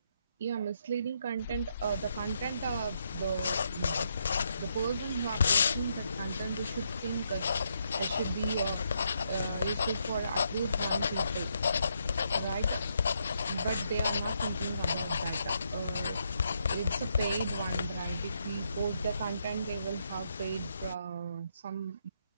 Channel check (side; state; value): both; inverted; correlation -0.78